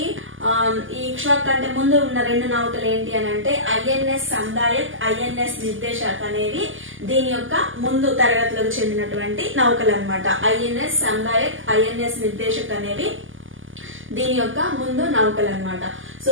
ఈ ఇక్ష్వాక్ కంటే ముందు ఉన్న 2 నౌకలు ఏంటి అని అంటే INS సందాయక్, INS నిర్దేశక్ అనేవి దీని యొక్క ముందు తరగతులకు చెందినటువంటి నౌకలు అన్నమాట. INS సందాయక్, INS నిర్దేశక్ అనేవి దీని యొక్క ముందు నౌకలు అన్నమాట. సో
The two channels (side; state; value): left; late; 0.58 ms